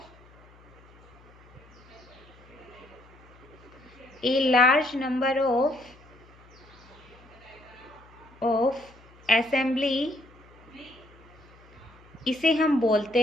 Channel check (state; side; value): noise; left; hum, 25 dB below the sound